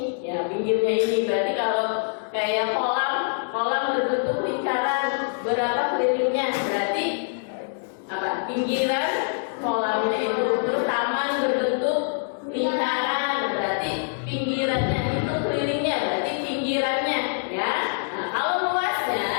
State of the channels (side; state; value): right; silent; 62 dB below the other